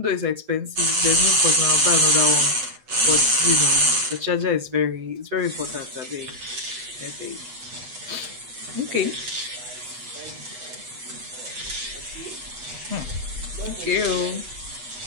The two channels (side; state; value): left; late; 8.2 ms